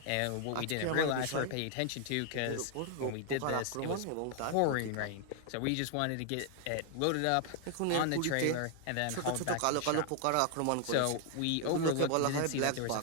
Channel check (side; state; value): both; different; correlation 0.00